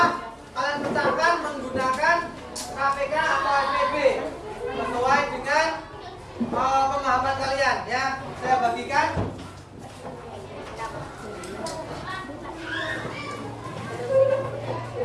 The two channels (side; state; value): both; identical; correlation 1.00